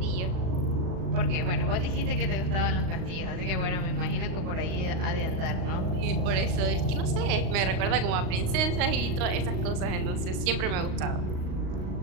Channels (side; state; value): left; late; 38 ms